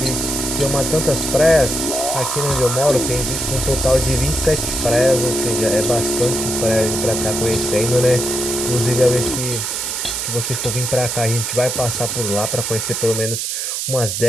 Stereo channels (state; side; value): noise; right; hiss, 2 dB below the sound